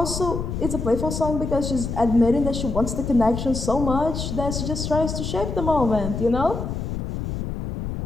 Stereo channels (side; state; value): left; noise; rumble, 4 dB below the sound